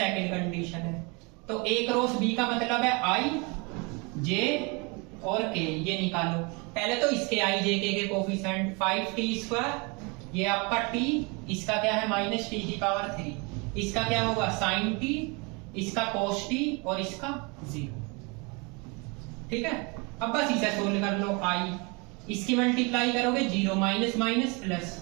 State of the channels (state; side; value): quieter; left; 29.9 dB